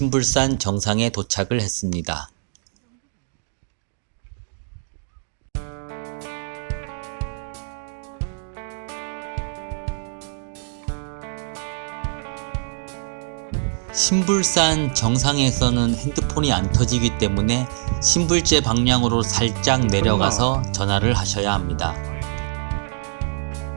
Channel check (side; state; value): left; silent; digital silence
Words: 정상에 도착을 했습니다. 신불산 정상에서는 핸드폰이 안 터지기 때문에 신불제 방향으로 살짝 내려가서 전화를 하셔야 합니다.